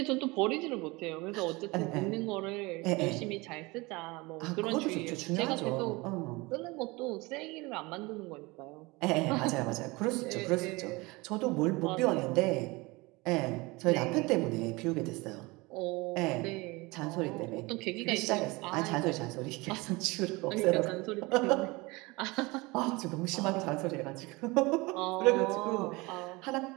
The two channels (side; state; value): left; quieter; 23.9 dB